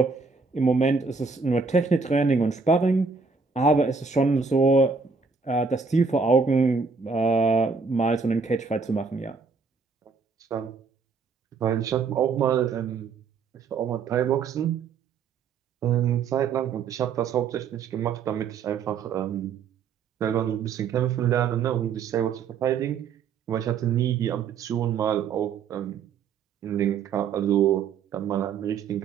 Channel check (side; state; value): left; quieter; 5.2 dB